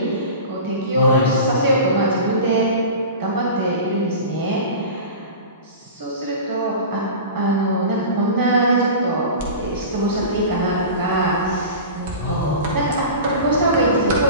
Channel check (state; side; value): inverted; both; correlation -0.33